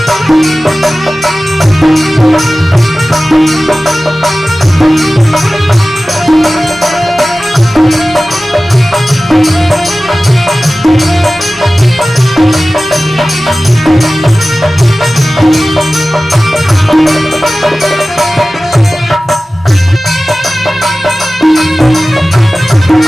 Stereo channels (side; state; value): both; normal; correlation 0.96